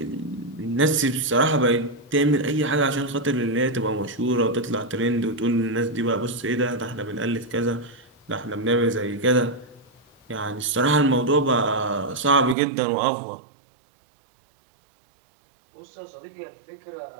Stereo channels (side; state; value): left; drops out; at 12.6 s